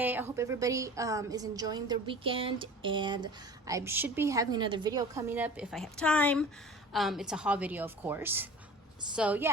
I hope everybody is enjoying their weekend, and I should be having another video coming up if I have time. It's a haul video, of course. So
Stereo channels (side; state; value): both; normal; correlation 0.40